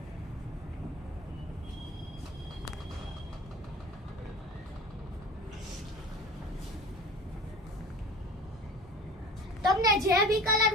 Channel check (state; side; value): normal; both; correlation 0.39